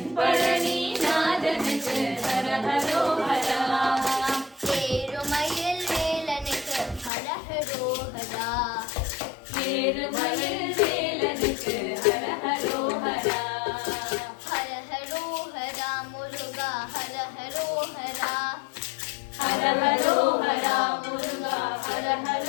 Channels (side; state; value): right; drops out; at 7.1 s